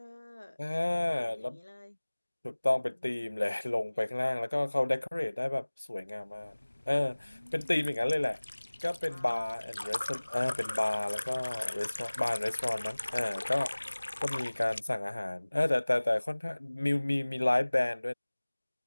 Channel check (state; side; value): inverted; both; correlation -1.00